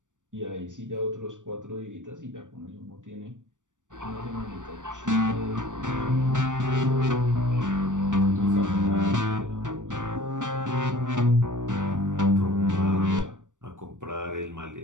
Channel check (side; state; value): left; late; 0.86 ms